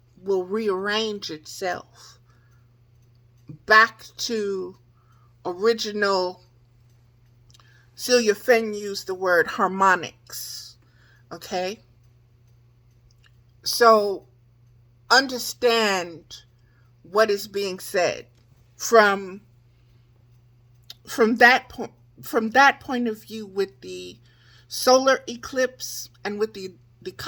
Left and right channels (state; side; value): identical; both; correlation 1.00